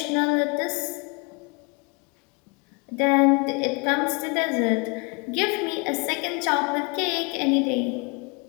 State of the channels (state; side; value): quieter; right; 31.3 dB